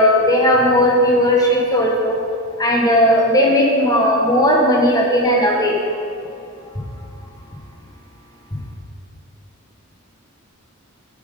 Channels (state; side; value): normal; both; correlation 0.14